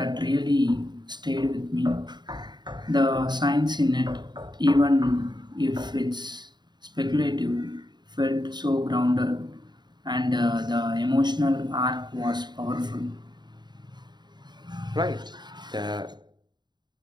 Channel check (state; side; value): late; left; 0.21 ms